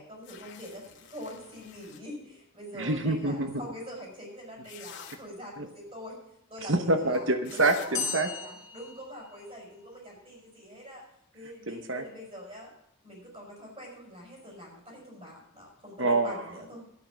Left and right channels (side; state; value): both; normal; correlation -0.11